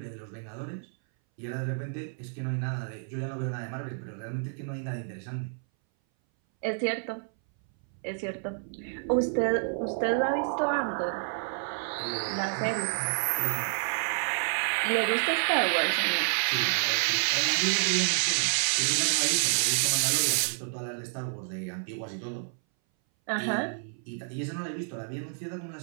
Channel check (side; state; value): left; silent; 58 dB below the other